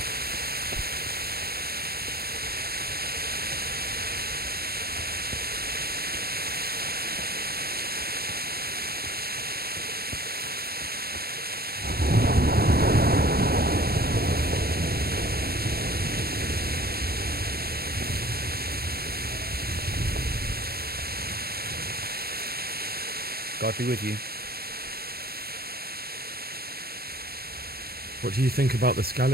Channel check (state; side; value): late; left; 0.45 ms